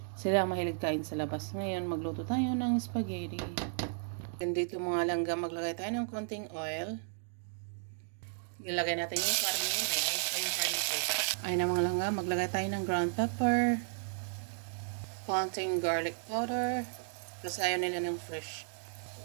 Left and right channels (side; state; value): left; silent; digital silence